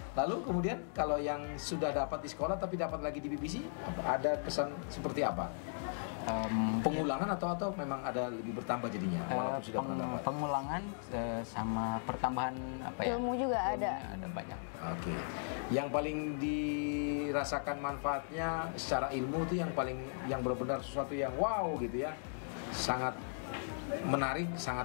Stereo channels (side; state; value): right; silent; digital silence